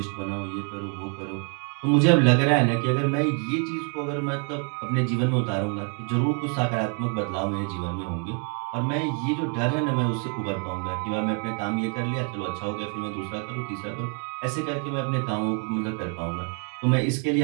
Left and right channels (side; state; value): left; quieter; 39.3 dB